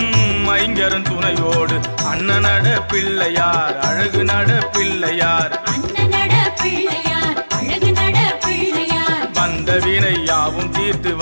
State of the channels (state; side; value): inverted; both; correlation -1.00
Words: ஐங்கரன் துணையோடு. அண்ணனட பிள்ளையார் அழகு நட பிள்ளையார், அண்ணனட பிள்ளையார் அழகு நட பிள்ளையார். வந்த வினை யாவும் தீர்த்து